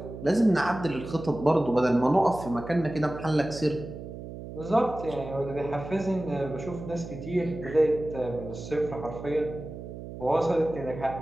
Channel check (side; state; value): right; noise; hum, 11 dB below the sound